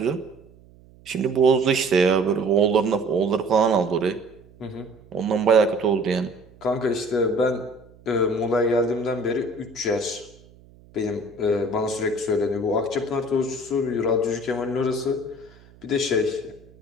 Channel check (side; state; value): right; noise; hum, 26 dB below the sound